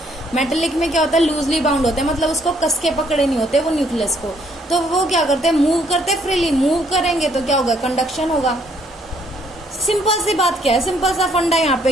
मेटेलिक में क्या होता है, लूजली बाउंड होते हैं, मतलब उसको कस के पकड़े नहीं होते वो न्यूक्लियस को। तो वो क्या करते हैं, मूव करते हैं फ्रीली। मूव करेंगे तो क्या होगा, कंडक्शन होगा। सिंपल सी बात क्या है, सिंपल सा फंडा यहाँ पे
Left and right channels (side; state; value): both; normal; correlation 0.67